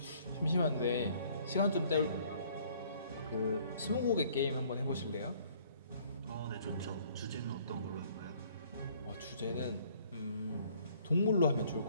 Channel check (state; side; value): inverted; both; correlation -0.59